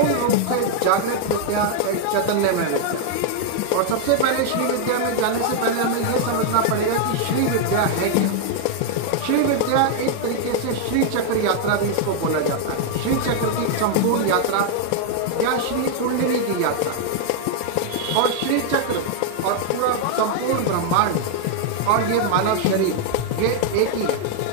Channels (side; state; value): both; different; correlation 0.00